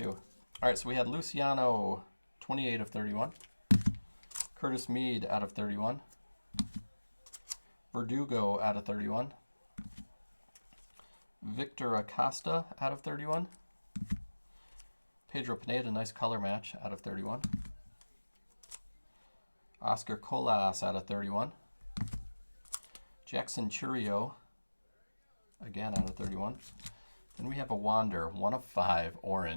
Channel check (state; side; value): inverted; both; correlation -1.00